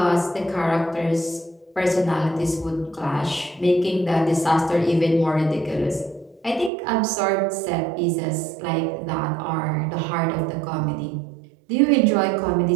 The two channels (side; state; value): left; drops out; at 6.7 s